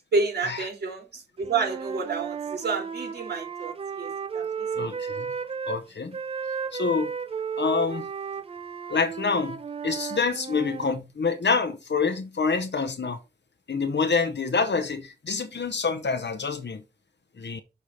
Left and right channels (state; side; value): normal; both; correlation 0.16